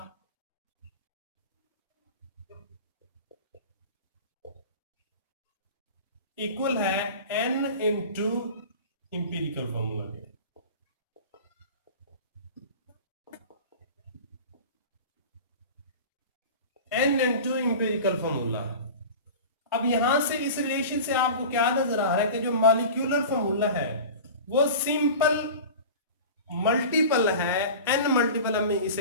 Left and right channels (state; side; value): inverted; both; correlation -0.34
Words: इक्वल है n इंटू इंपेरिकल फार्मूला के। n into empirical formula. अब यहां से इस रिलेशन से आपको क्या नजर आ रहा है कि जो मॉलिक्यूलर फार्मूला है वो सिंपल मल्टीपल है, n मल्टीपल हम